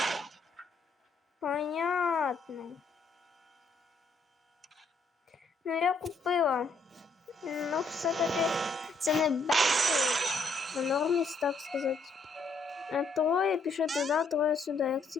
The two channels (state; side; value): quieter; right; 3.6 dB